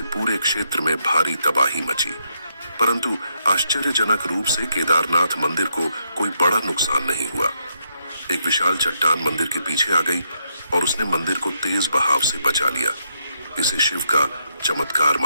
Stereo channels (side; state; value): both; inverted; correlation -0.78